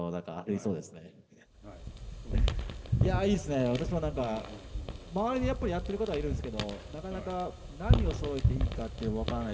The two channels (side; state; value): both; identical; correlation 1.00